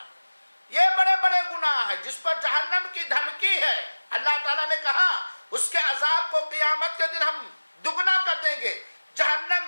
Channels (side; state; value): both; inverted; correlation -1.00